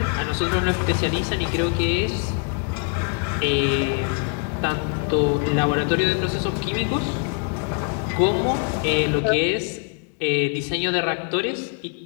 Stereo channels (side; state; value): right; quieter; 35.9 dB